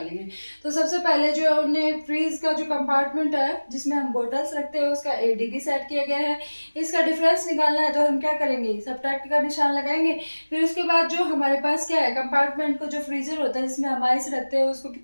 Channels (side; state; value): both; inverted; correlation -1.00